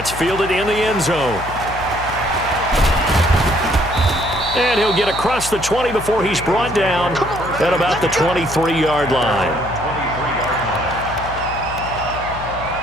fielded in the end zone. And he'll get across the 20 before he's brought down at about the 23-yard line.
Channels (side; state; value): left; noise; hum, 11 dB below the sound